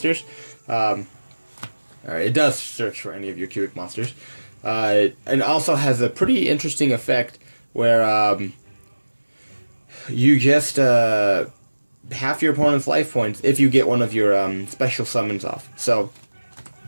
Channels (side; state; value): both; inverted; correlation -1.00